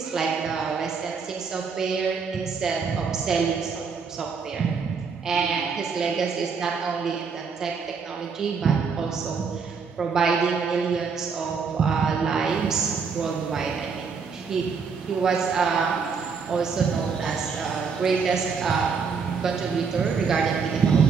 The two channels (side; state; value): left; quieter; 5.6 dB